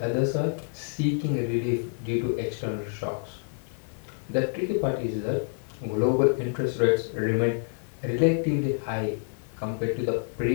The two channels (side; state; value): right; silent; digital silence